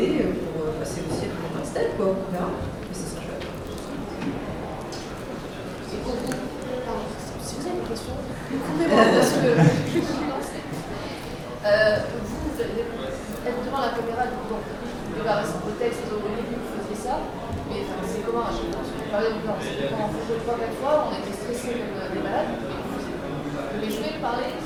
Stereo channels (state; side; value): identical; both; correlation 1.00